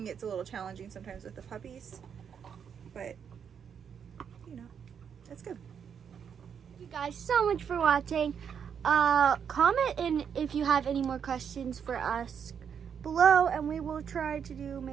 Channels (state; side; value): quieter; left; 7.5 dB